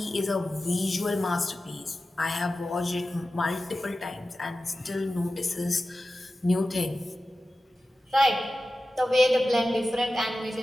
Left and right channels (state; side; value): normal; both; correlation 0.94